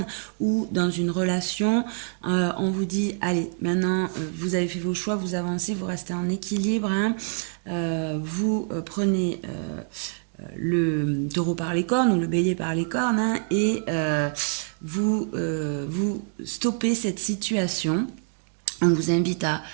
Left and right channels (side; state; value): left; silent; 61 dB below the other